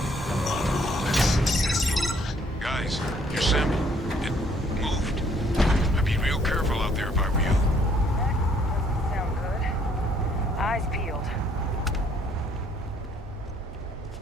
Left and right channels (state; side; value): normal; both; correlation 0.64